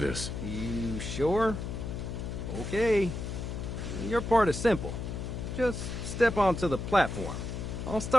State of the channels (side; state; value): left; noise; hum, 5 dB below the sound